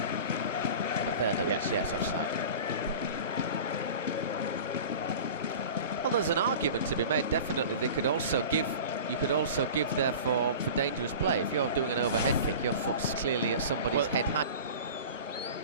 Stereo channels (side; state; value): both; inverted; correlation -0.37